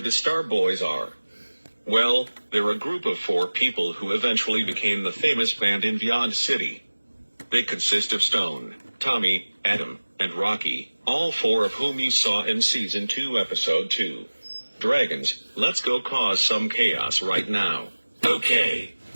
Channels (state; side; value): inverted; both; correlation -1.00